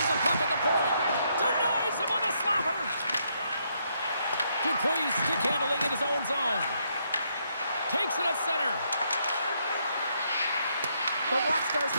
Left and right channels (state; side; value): inverted; both; correlation -0.75